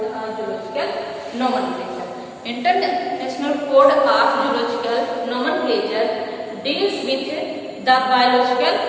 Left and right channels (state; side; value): identical; both; correlation 1.00